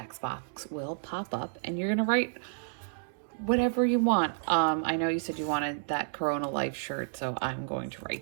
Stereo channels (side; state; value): left; silent; digital silence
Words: box will pop up, and you're going to write whatever you want. I know you said you wanted that Corona Life shirt, so I'm going to